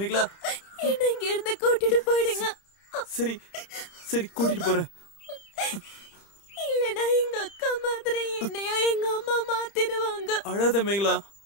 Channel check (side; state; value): right; late; 30 ms